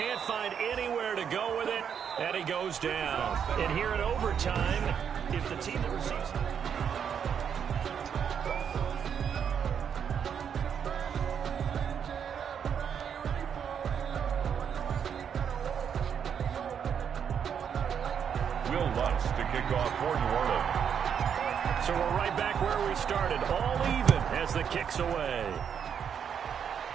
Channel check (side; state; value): left; quieter; 7.8 dB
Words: find anywhere to go with it, and he goes down. And here in overtime, if the team that receives... Will Lutz to kick off for New Orleans. So we're right back where we started, all even as the kick's away.